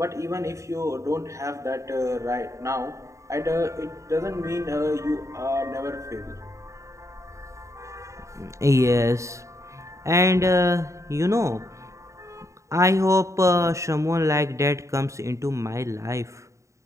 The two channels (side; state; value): left; late; 0.15 ms